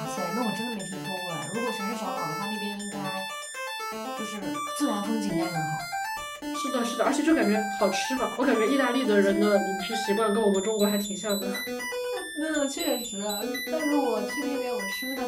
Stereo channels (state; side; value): identical; both; correlation 1.00